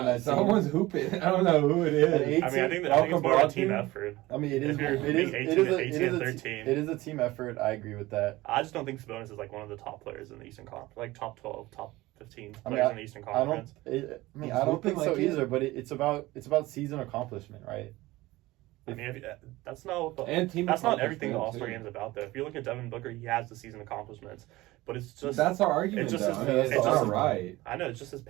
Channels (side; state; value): left; quieter; 18.9 dB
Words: that someone's team. hooping. I don't know who it is. I mean, I think it's more of a team effort. I mean, it is a team effort. I agree with that. I just don't think Sabonis is like one of the top players in the Eastern Conference, like top 12, top 15 players in the Eastern Conference. I don't think so either. But it's about season accomplishment, right? I mean, that's not everything the All-Star game is about, though. If you look at Devin Booker, he has the season accomplishments, but it's just that's our argument. It's just it's not right. I know it's just his